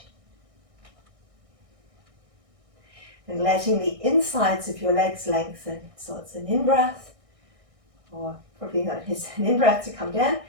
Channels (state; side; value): late; left; 1.6 ms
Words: And letting the insides of your legs lengthen. So it's an in-breath, or probably not, it's an in-breath to come down,